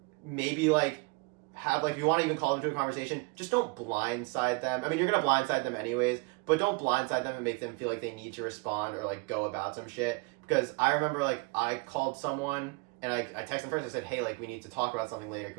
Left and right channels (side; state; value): left; quieter; 29.4 dB